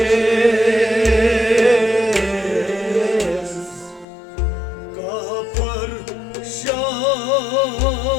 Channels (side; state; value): right; drops out; at 4.0 s